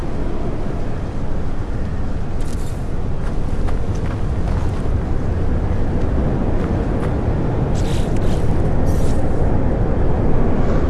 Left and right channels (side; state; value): both; identical; correlation 1.00